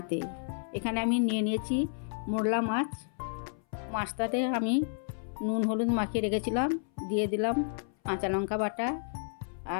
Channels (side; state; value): right; silent; 57 dB below the other